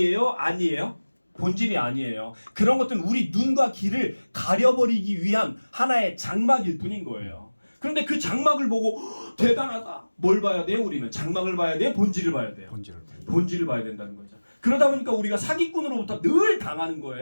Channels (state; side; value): inverted; both; correlation -1.00